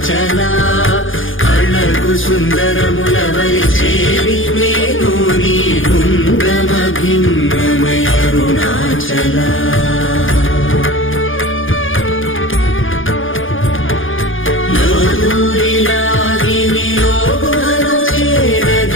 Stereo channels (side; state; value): right; late; 0.58 ms